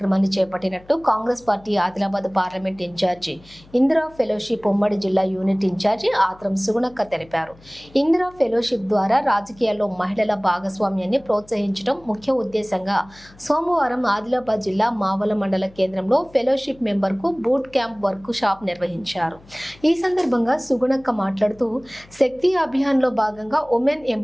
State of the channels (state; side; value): noise; left; hum, 25 dB below the sound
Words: చేపట్టినట్టు Congress party Adilabad parliament incharge Indira fellowship ఉమ్మడి జిల్లా యూనిట్ ఇన్ఛార్జి ఆత్రం సుగుణక్క తెలిపారు. ఇందిరా ఫెలోషిప్ ద్వారా రాజకీయాల్లో మహిళల భాగస్వామ్యాన్ని ప్రోత్సహించడం ముఖ్య ఉద్దేశంగా సోమవారం ఆదిలాబాద్ జిల్లా మావల మండల కేంద్రంలో ఫెలోషిప్ మెంబర్కు బూట్ క్యాంప్ వర్క్ షాప్ నిర్వహించారు. ఈ సందర్భంగా సుగుణక్క మాట్లాడుతూ శక్తి అభియాన్లో భాగంగా ఉమెన్